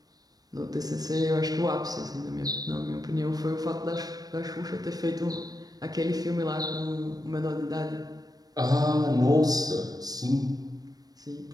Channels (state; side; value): late; left; 0.19 ms